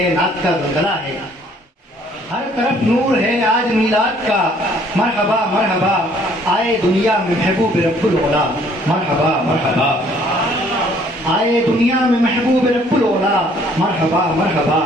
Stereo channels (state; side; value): normal; both; correlation 0.60